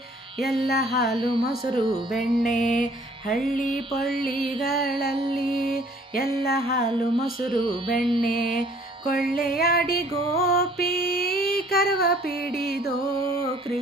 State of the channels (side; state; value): both; normal; correlation 0.57